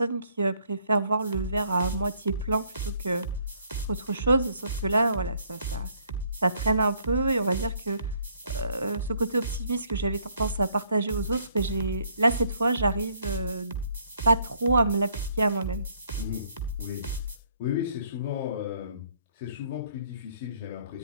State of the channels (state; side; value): inverted; both; correlation -0.66